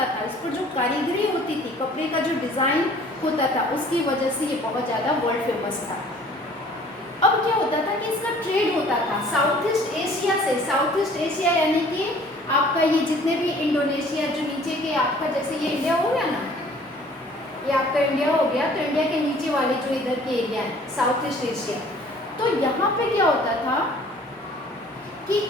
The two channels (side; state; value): both; normal; correlation 0.53